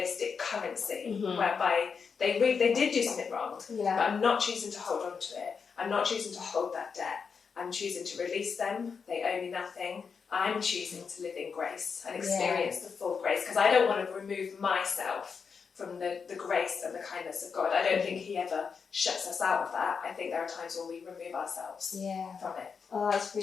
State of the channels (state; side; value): quieter; right; 5.9 dB